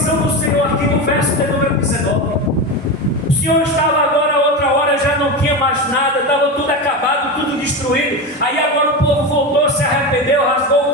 do Senhor aqui no verso de número 19. O Senhor estava agora, outra hora já não tinha mais nada, estava tudo acabado, tudo destruído. Aí agora o povo voltou, se arrependeu, rasgou o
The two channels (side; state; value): both; normal; correlation 0.19